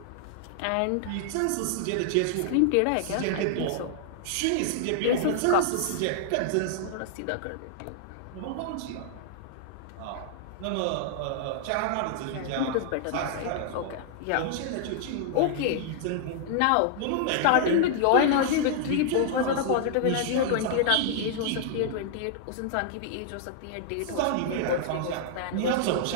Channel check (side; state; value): both; different; correlation -0.01